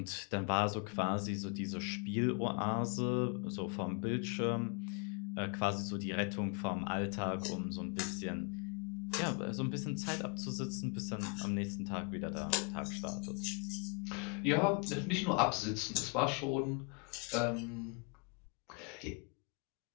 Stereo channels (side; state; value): right; quieter; 34.9 dB